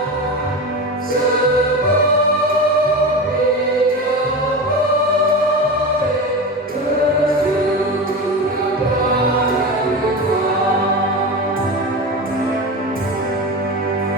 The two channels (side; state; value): both; normal; correlation 0.25